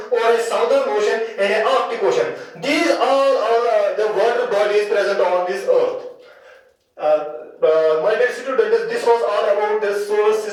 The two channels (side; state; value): both; identical; correlation 1.00